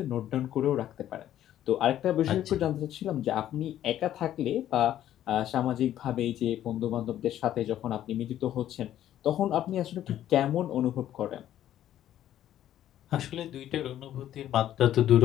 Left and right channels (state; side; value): quieter; right; 11.9 dB